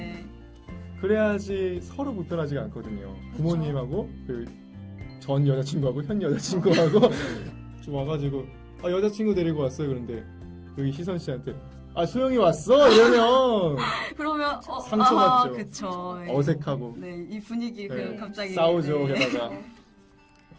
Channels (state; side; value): identical; both; correlation 1.00